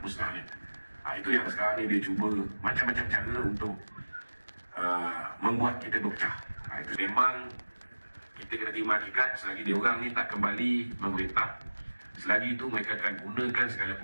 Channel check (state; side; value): inverted; both; correlation -1.00